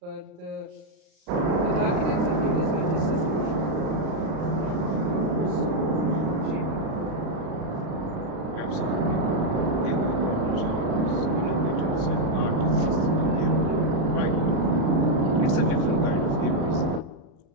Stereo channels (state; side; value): late; left; 37 ms